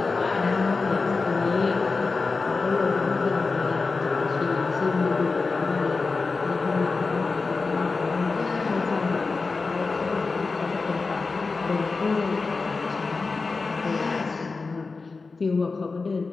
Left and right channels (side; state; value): right; quieter; 4.1 dB